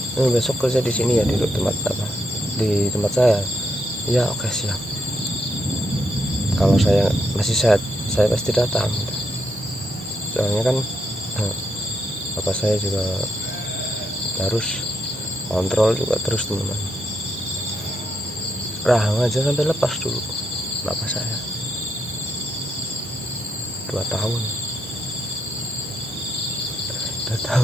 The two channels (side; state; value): both; normal; correlation 0.78